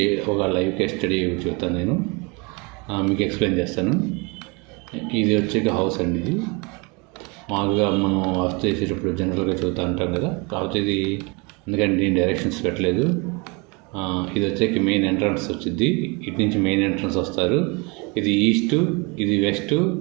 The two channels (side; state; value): left; quieter; 29.4 dB